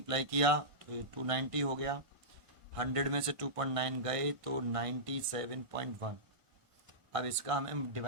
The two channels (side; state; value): left; late; 1.5 ms